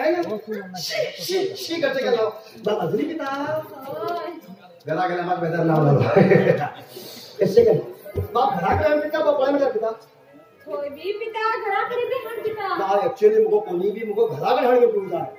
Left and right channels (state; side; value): identical; both; correlation 1.00